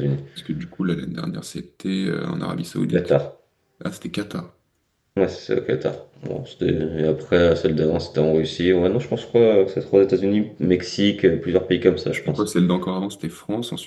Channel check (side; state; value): both; identical; correlation 1.00